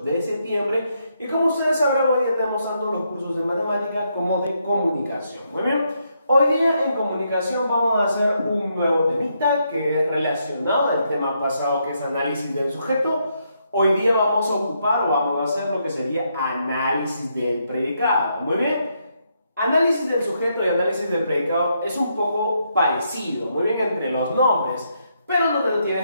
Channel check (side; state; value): both; inverted; correlation -0.78